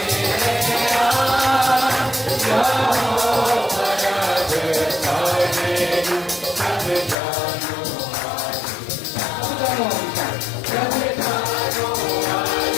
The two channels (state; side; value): drops out; right; at 7.2 s